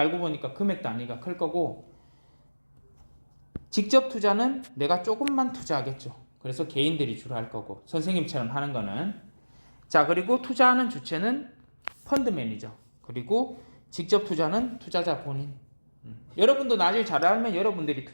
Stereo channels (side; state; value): both; inverted; correlation -1.00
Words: 보니까 금액 단위가 클 거고, 직접 투자는 내가 조금만 투자하겠죠. 그래서 개인들이 주로 할 거고, 선생님처럼 하는 거는. 자, 그리고 투자하는 주체는 펀드 매니저. 그리고 직접 투자는 투자자 본인. 여러분도 나중에 잘 알면 여러분들이